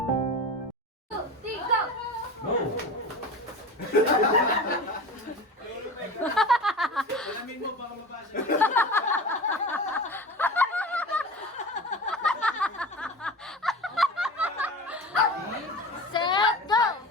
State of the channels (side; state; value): both; normal; correlation 0.32